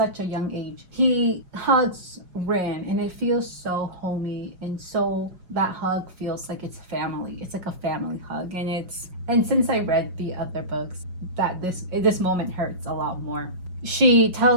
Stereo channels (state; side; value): late; left; 5.5 ms